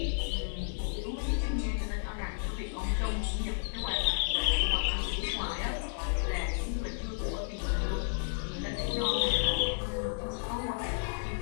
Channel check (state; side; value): silent; right; digital silence